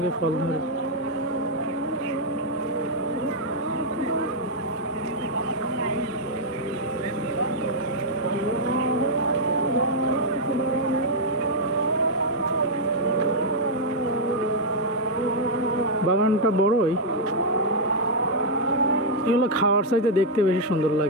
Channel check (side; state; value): both; normal; correlation -0.04